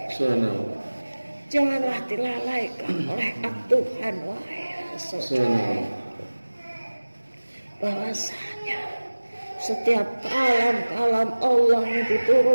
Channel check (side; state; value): both; inverted; correlation -1.00